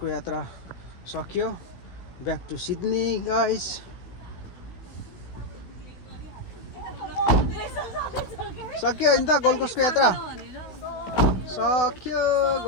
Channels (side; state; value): right; late; 16 ms